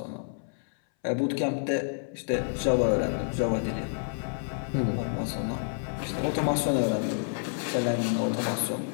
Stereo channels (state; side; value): silent; right; 59 dB below the other